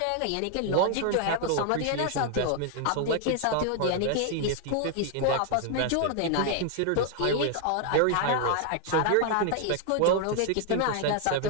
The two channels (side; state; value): both; different; correlation 0.00